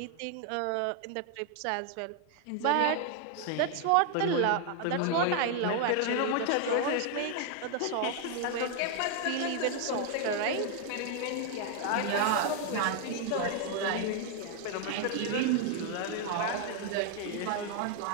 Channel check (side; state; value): both; different; correlation 0.00